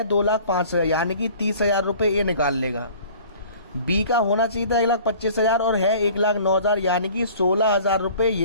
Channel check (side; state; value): both; inverted; correlation -0.48